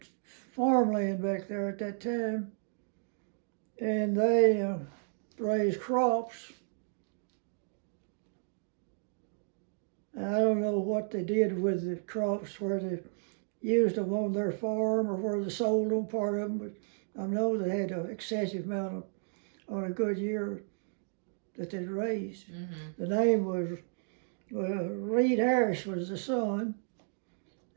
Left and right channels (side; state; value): left; silent; digital silence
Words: farmland back there at that time, and they raised crops. I don't know what they did with the crops, where they used them on their farm or where they sold them, part of them, but I know they had an excessive amount on a good year that they'd raised. Mm-hmm. The name was Reed Harris was the son,